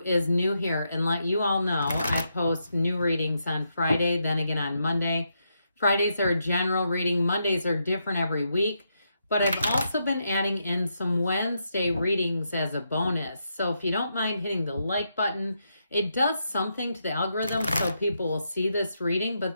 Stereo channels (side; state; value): both; inverted; correlation -0.82